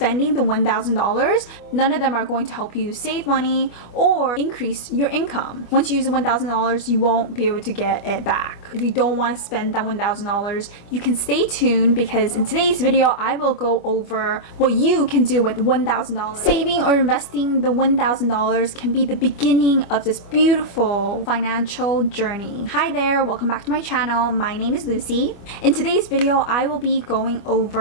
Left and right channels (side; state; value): right; late; 25 ms